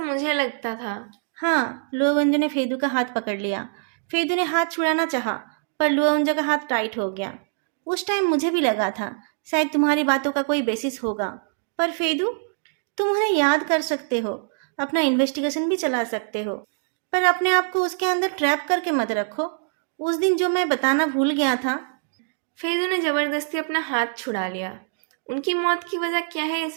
लगता था। हाँ, लुओवेंजो ने फेदू का हाथ पकड़ लिया। फेदू ने हाथ छुड़ाना चाहा, पर लुओवेंजो का हाथ टाइट हो गया। उस टाइम मुझे भी लगा था शायद तुम्हारी बातों का कोई बेसिस होगा, पर फेदू, तुम उन्हें याद कर सकते हो, अपना इन्वेस्टिगेशन भी चला सकते हो, पर अपने आप को उसके अंदर ट्रैप करके मत रखो। उस दिन जो मैं बताना भूल गया था। फेदू ने जबरदस्ती अपना हाथ छुड़ा लिया। उनकी मौत की वजह क्या है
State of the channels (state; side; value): silent; left; digital silence